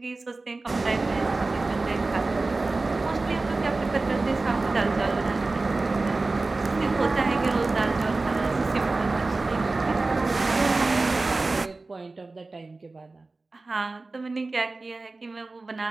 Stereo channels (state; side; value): quieter; left; 3.4 dB